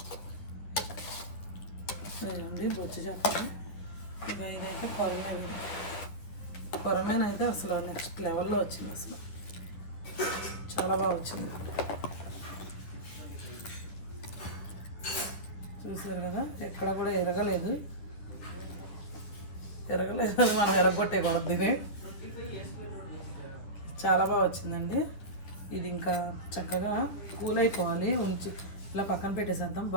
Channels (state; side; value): late; right; 10 ms